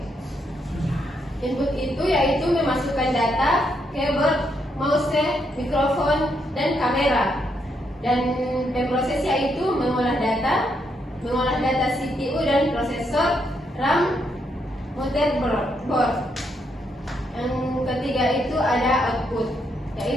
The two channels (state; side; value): normal; both; correlation 0.77